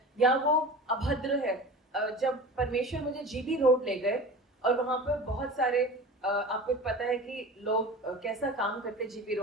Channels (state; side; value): normal; both; correlation 0.35